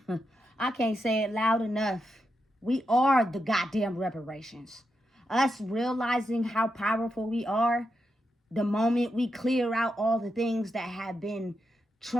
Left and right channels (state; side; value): normal; both; correlation 0.85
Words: I can't say it loud enough. We are the goddamn reparations. Us realizing how powerful we are, the moment we clear out all the things that have been